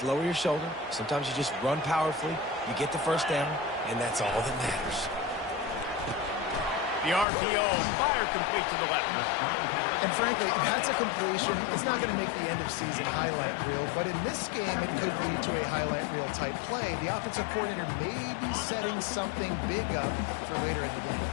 lower your shoulder. Sometimes you just run powerfully. You get the 1st down, and that's all that matters. The RPO, fire complete to the left. And frankly, if that's a completion, it's not going to make the end-of-season highlight reel. But in this game, it could lead to a highlight reel type play. The offensive coordinator may be setting something big up for later in the game.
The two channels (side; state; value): right; drops out; at 7.2 s